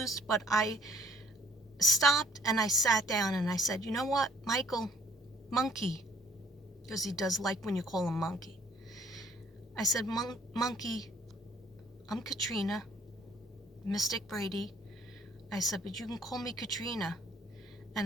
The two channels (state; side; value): normal; both; correlation 0.59